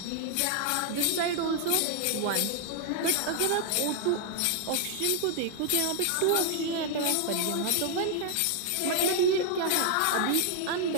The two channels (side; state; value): both; different; correlation 0.00